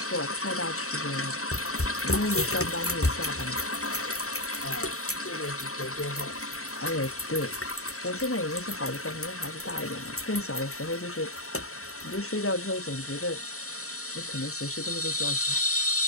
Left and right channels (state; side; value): late; right; 0.64 ms